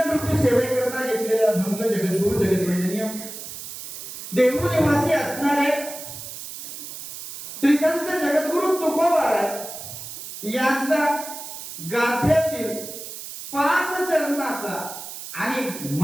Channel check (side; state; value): right; noise; hiss, 10 dB below the sound